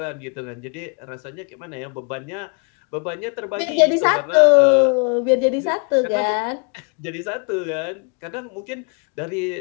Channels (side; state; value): right; quieter; 37.3 dB